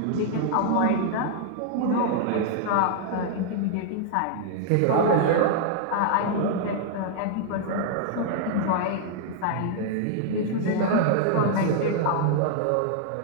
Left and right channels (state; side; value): different; both; correlation -0.01